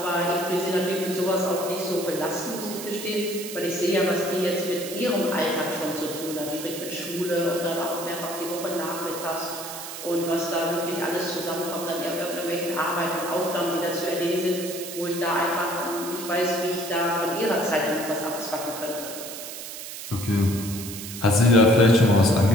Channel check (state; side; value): noise; right; hiss, 9 dB below the sound